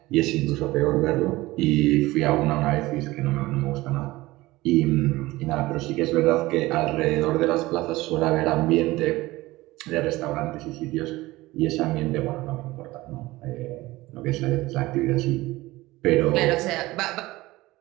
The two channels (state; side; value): quieter; left; 19.1 dB